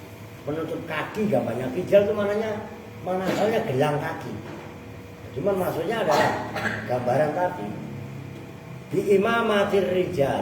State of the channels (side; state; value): both; identical; correlation 1.00